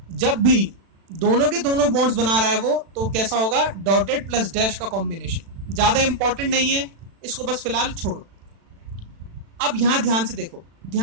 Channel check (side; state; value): left; late; 36 ms